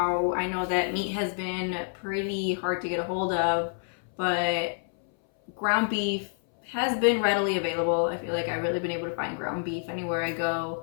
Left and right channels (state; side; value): silent; right; 59 dB below the other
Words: I know that meat has been pretty hard to get a hold of, but ground beef has been readily available. I feel like I've really been able to find ground beef anywhere I go.